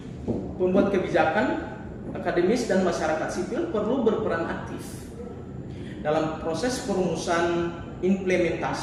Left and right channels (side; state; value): both; identical; correlation 1.00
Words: pembuat kebijakan, akademis, dan masyarakat sipil perlu berperan aktif dalam proses perumusan,